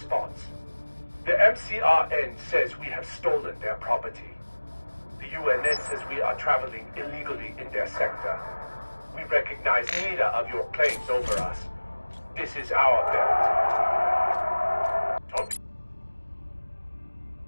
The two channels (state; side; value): inverted; both; correlation -1.00